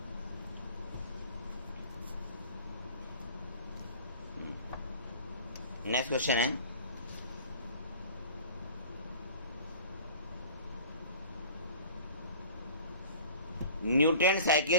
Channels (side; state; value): both; inverted; correlation -0.44